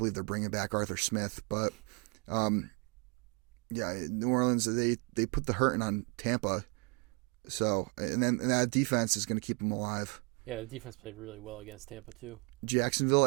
they're bringing back Arthur Smith, but. New Orleans, they put the hurting on Tampa, so and that defense is going to keep them alive. Yeah, the defense played really well against Tampa too. Jacksonville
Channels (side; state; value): left; quieter; 32.9 dB